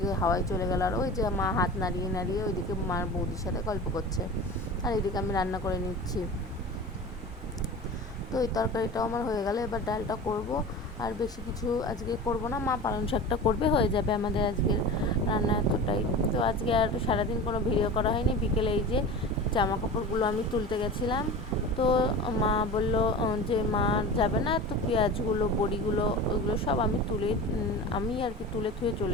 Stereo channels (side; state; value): both; normal; correlation 0.33